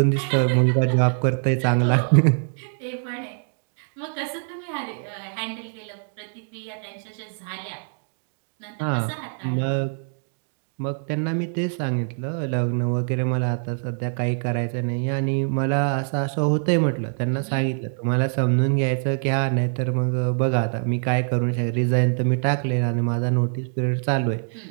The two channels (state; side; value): silent; left; 63 dB below the other